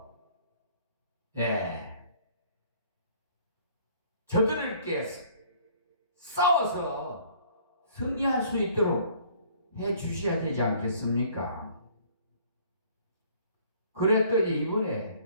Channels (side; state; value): both; inverted; correlation -0.57